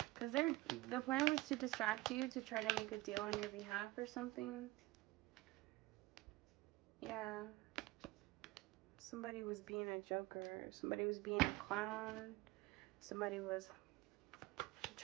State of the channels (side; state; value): left; quieter; 20.1 dB